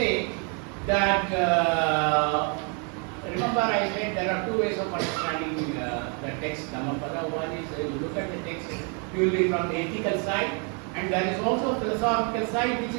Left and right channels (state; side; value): quieter; left; 37.5 dB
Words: that remember I said there are two ways of understanding the text Dhammapada. One is you look at the text purely from the ethical side, and there is also a philosophical side which